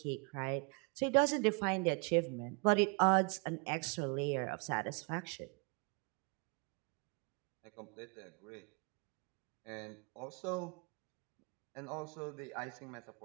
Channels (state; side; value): quieter; left; 32.8 dB